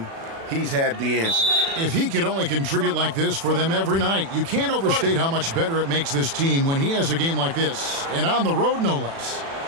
he's had the answer. If he could only contribute like this for them every night, you can't overstate how much better it makes this team when he has a game like this, and on the road no less.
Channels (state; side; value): late; left; 36 ms